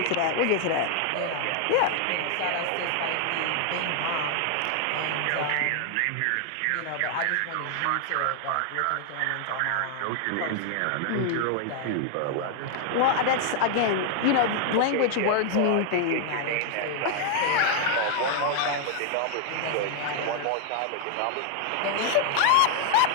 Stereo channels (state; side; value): different; both; correlation 0.00